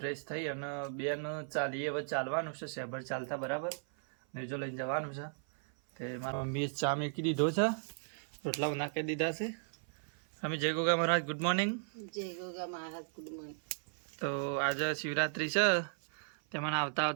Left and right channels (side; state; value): left; silent; 54 dB below the other